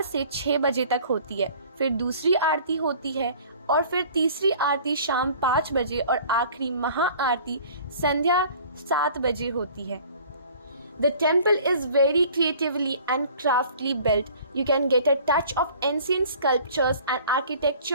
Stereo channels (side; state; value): both; inverted; correlation -0.49